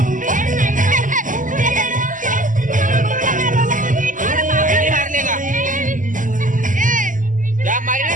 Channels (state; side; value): late; left; 0.38 ms